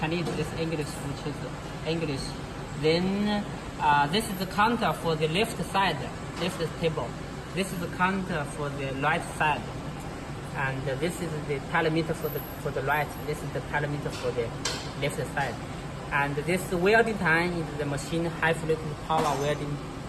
this is English, which is English. Then this is the counter for the left side, left table. This is the counter for the right side. And this is the telemeter for the right. This is the telemeter for the left side. And this welding time is the machine high frequency power welding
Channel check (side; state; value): both; identical; correlation 1.00